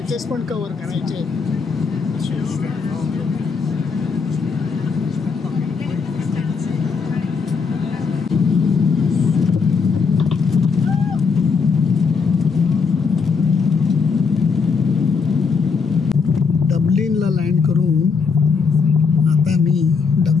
पण कव्हर करायचे. डब्लिनला लँड करून आता मी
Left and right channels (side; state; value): right; quieter; 5.3 dB